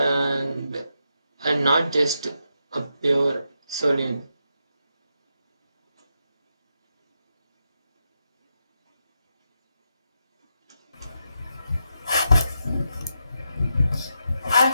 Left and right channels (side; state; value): both; inverted; correlation -0.84